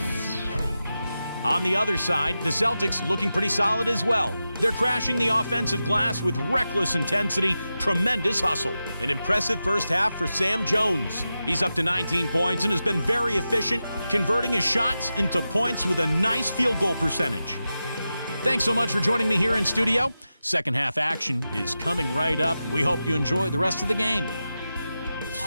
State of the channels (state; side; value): inverted; both; correlation -0.92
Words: On the other side, the Celtics looking pretty solid as well. They're crashing the offensive glass with reckless intensity, tremendous hustle. An impressive first half for Sam Jones. He's up to 19 points and has been very efficient, converting his shots into points with a nice field goal percentage. Thanks so much for joining me here in studio. Second half action is coming right up. We hope you enjoy the rest of the game.